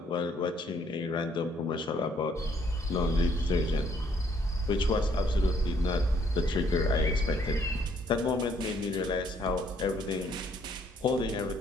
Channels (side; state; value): both; normal; correlation 0.66